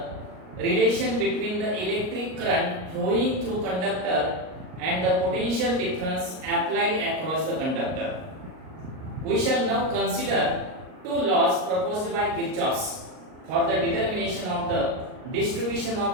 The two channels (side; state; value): left; late; 38 ms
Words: relation between the electric current flowing through conductor and the potential difference applied across the conductor. We shall now consider two laws proposed by Kirchhoff for the determination of the distribution